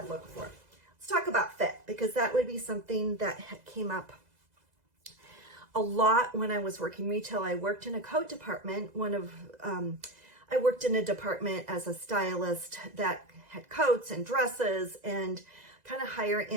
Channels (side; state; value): left; late; 2.0 ms